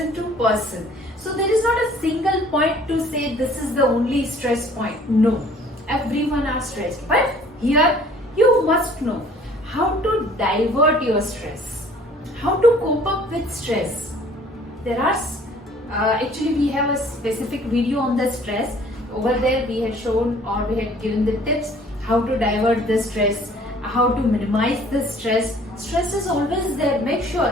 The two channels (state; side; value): normal; both; correlation 0.54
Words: to person. So there is not a single point to say this is the only stress point. No, everyone are stressed. But here You must know how to divert your stress, how to cope up with stress. There are actually we have a specific video on the stress. Over there we had shown or we had given the tips how to divert the stress, how to minimize the stress. Stress is always there. Make